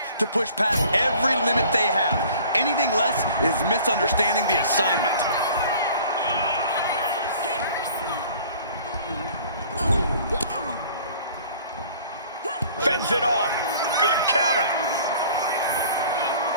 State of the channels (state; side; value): inverted; both; correlation -0.50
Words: to push past every limit they have. Anything less is misunderstanding the assignment. Fends it off. Good counter.